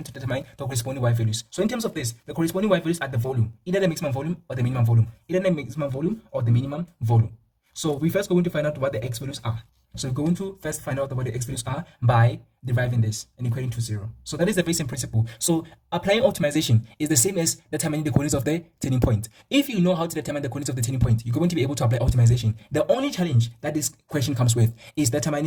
to determine the corresponding y values. So in terms of this, the corresponding y values are the volume, either the maximum volume or the minimum volume, either the maximum volume or the minimum volume. So we first going to find out what the x values are. So we're going to first find out what the x values are by deriving this and equating to 0. So that is the very same principle. So applying optimization is the same as determining the coordinates of the turning point. If you know how to determine the coordinates of the turning point, you're going to be able to apply optimization. The only challenge that this question comes with is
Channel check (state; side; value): identical; both; correlation 1.00